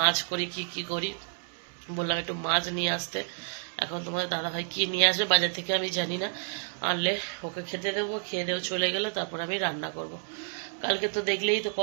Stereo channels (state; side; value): silent; left; 57 dB below the other